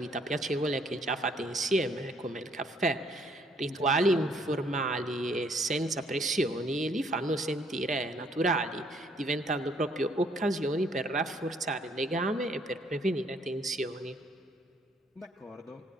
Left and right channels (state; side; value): normal; both; correlation 0.65